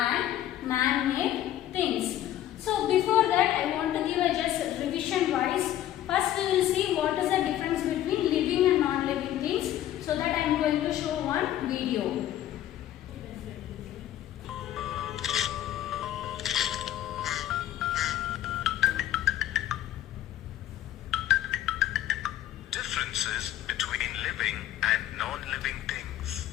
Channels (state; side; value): quieter; right; 12.6 dB